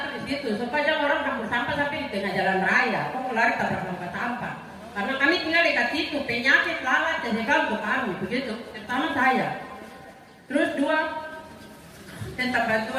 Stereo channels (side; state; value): both; identical; correlation 1.00